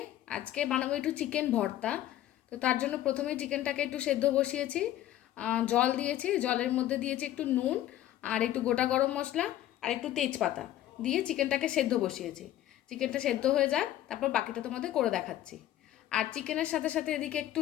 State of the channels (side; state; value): right; quieter; 13.2 dB